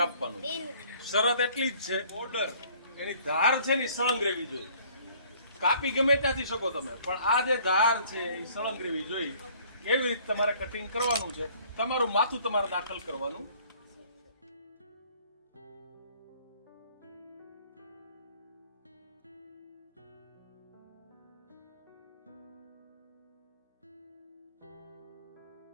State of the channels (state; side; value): inverted; both; correlation -0.57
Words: શરત એટલી જ છે, બોર્ડર એની ધાર છે ને સળંગ રહેવી જોઈએ. કાપી ગમે ત્યાંથી શકો તમે, પણ આ જે ધાર છે એ સળંગ રહેવી જોઈએ. એવી રીતે તમારે કટિંગ કરવાનું છે. તમારું માથું તમારે દાખલ કરવાનું.